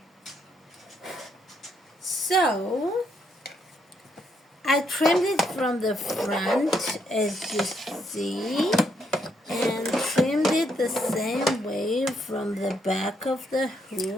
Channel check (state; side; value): normal; both; correlation 0.75